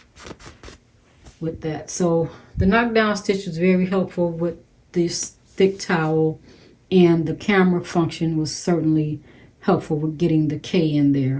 with that. So the knockdown stitch was very helpful with this thick towel, and the camera function was certainly helpful with getting the K in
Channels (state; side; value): identical; both; correlation 1.00